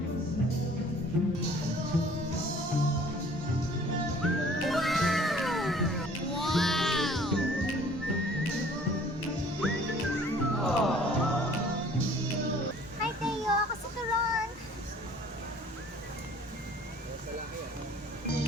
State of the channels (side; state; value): both; normal; correlation 0.53